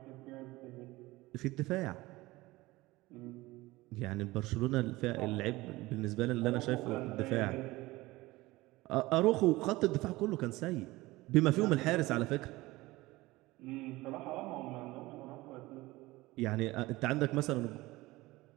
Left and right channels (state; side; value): quieter; left; 19.9 dB